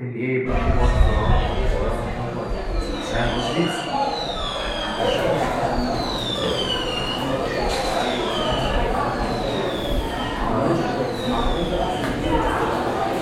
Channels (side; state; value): both; identical; correlation 1.00